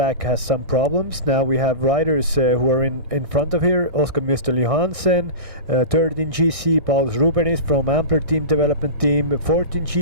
has some problems. Now we have riders who are in front of here. Oscar Müstel Johansen, third in GC. Paulus Rubenis from Ampler Team Development Team, fourth in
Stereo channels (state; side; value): late; left; 1.6 ms